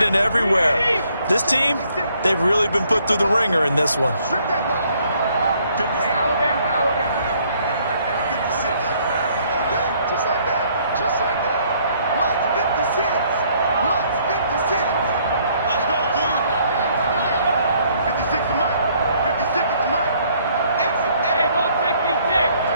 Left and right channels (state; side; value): inverted; both; correlation -0.65